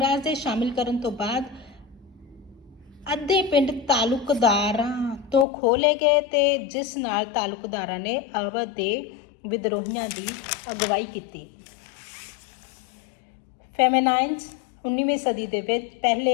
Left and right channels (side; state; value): right; drops out; at 5.5 s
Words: ਦੇ ਸ਼ਾਮਿਲ ਕਰਨ ਤੋਂ ਬਾਅਦ ਅੱਧੇ ਪਿੰਡ ਤਾਲੁਕਦਾਰਾਂ ਤੋਂ ਖੋਹ ਲਏ ਗਏ ਤੇ ਜਿਸ ਨਾਲ ਤਾਲੁਕਦਾਰਾਂ ਨੇ ਅਵਧ ਦੇ ਵਿਦਰੋਹੀਆਂ ਦੀ ਅਗਵਾਈ ਕੀਤੀ। ਫੈਮੇਨਾਈਨਸ 19ਵੀਂ ਸਦੀ ਦੇ ਵਿੱਚ